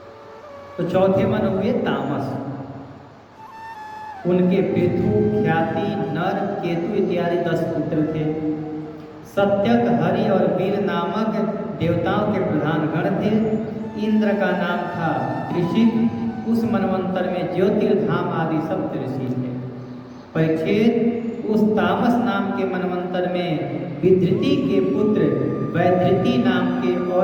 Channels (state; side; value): identical; both; correlation 1.00